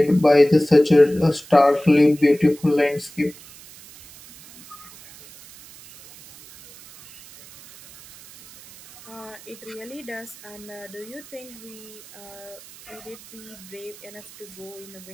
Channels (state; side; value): noise; right; hiss, 20 dB below the sound